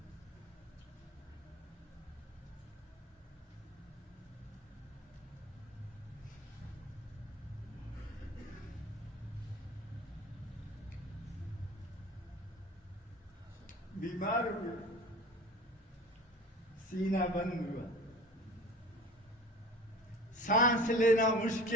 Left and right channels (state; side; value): normal; both; correlation 0.40